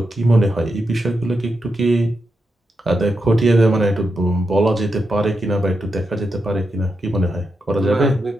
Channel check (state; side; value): normal; both; correlation 0.86